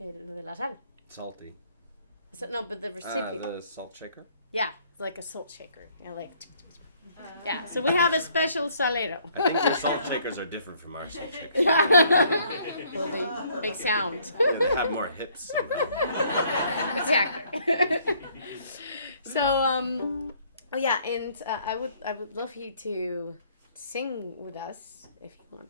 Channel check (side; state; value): both; inverted; correlation -0.63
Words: de la sal. Salty. No, but the recipient. The salt shaker? Yeah, it's like a salt shaker. Yeah, so we have a special salero. I think your salt shakers are different from our salt shakers. Well, they make sound. Yeah, they have more hips somehow. Exactly. So, yeah, and I would love you to sing with us if you want